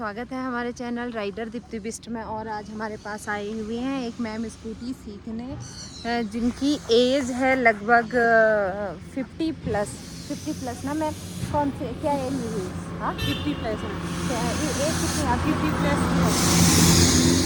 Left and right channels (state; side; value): identical; both; correlation 1.00